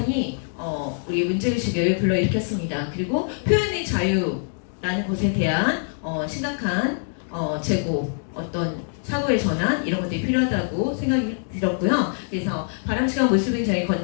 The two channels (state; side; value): silent; right; digital silence